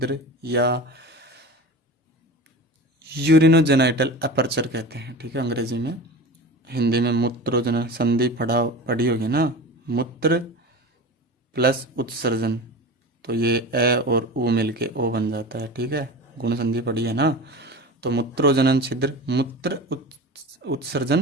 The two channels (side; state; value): both; normal; correlation 0.32